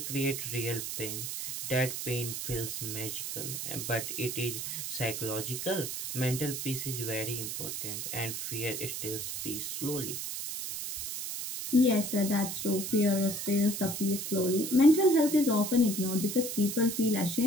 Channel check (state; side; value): noise; right; hiss, 5 dB below the sound